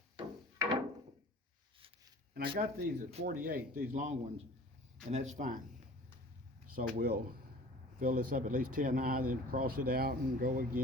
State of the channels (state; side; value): normal; both; correlation 0.45